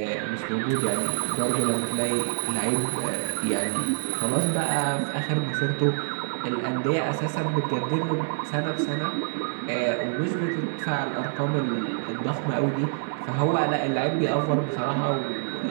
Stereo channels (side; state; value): left; silent; digital silence